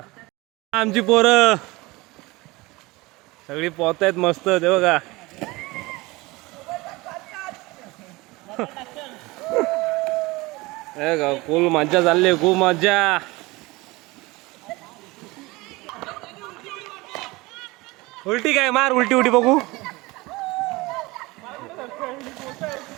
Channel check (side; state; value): left; quieter; 22.3 dB